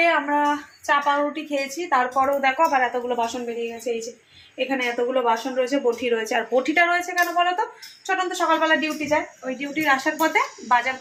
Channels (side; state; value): both; identical; correlation 1.00